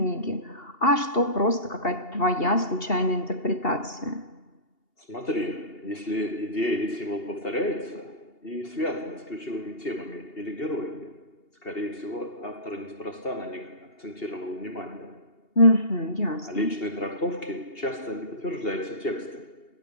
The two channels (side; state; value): right; late; 2.8 ms